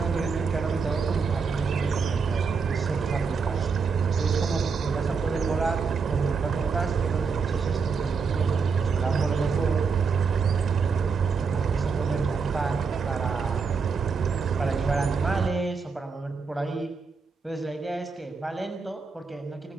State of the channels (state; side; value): quieter; left; 5.2 dB